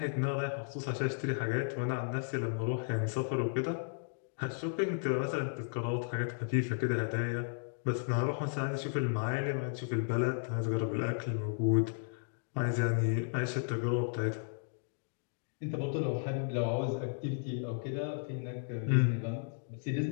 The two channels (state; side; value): silent; right; digital silence